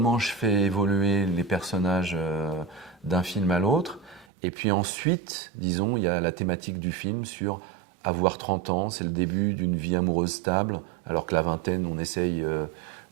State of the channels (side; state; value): left; drops out; at 4.2 s